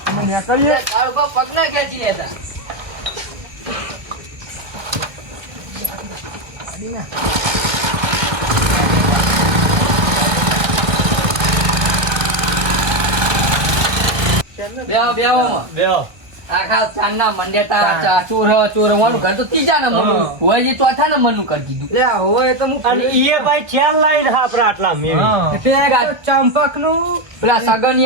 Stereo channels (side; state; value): left; late; 1.1 ms